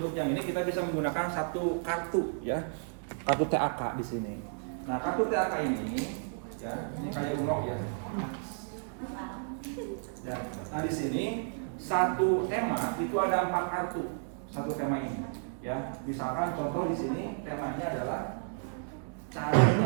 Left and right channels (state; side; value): silent; left; digital silence